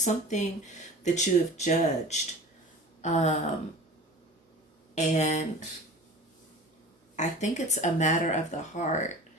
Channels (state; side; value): normal; both; correlation 0.38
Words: that you have judged. And I think it's a matter of the heart.